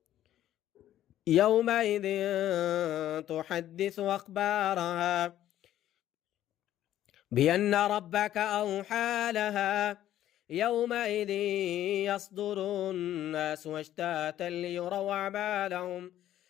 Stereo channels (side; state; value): right; quieter; 12.4 dB